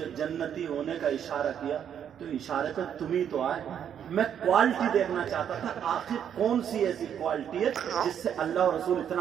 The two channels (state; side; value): quieter; left; 8.9 dB